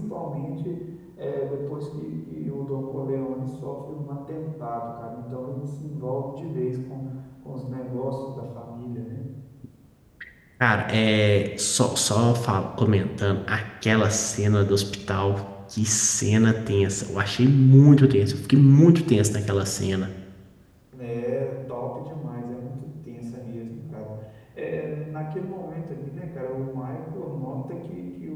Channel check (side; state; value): both; identical; correlation 1.00